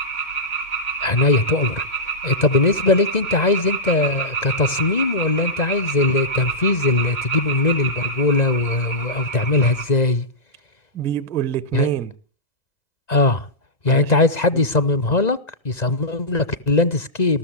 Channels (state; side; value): late; right; 2.0 ms